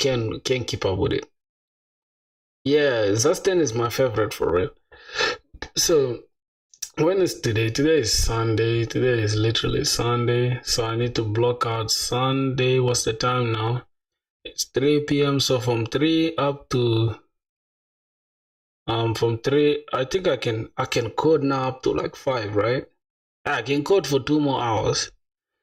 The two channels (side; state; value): both; identical; correlation 1.00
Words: keep up with it. Yeah, Zusten is my favorite for real. So when is today? Today is Sunday. Today is literally Sunday. So I need to block out Sunday. What's the time now? It's 3 p.m. So from 3 up to from 3, I think I can code now up to like 5, right? I can code for 2 more hours.